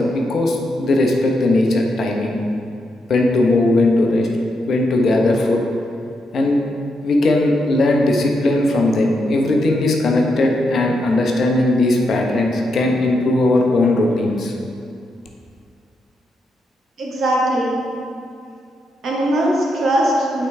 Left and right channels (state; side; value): normal; both; correlation 0.82